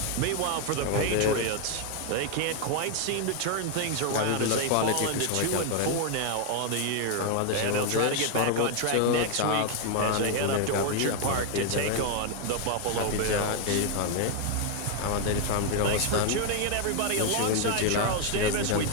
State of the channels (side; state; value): both; different; correlation 0.00